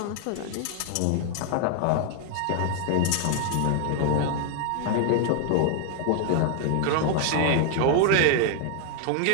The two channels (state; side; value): different; both; correlation 0.00